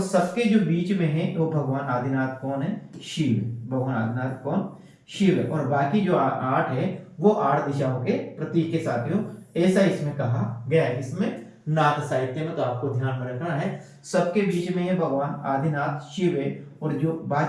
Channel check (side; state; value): both; identical; correlation 1.00